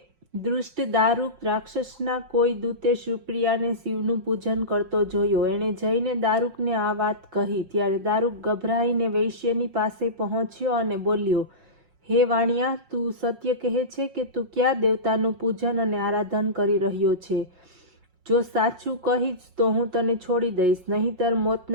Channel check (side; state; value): left; late; 5.5 ms